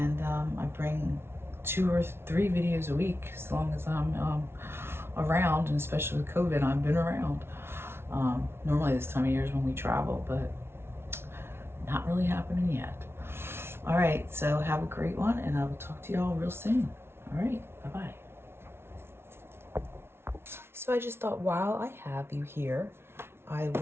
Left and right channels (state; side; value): late; left; 0.12 ms